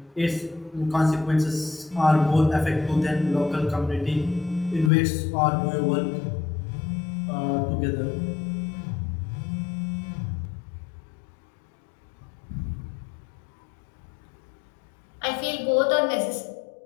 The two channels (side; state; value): right; drops out; at 4.9 s